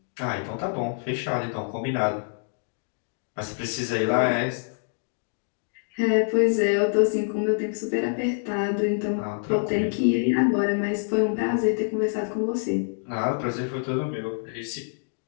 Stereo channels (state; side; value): silent; right; digital silence